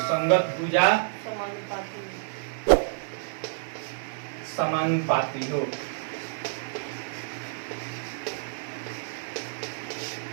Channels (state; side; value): silent; left; digital silence